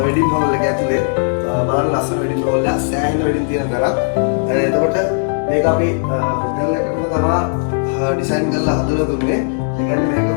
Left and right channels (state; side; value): silent; right; digital silence